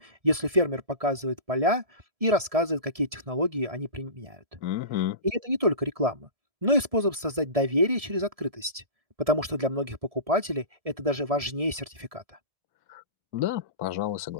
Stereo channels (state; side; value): late; left; 1.7 ms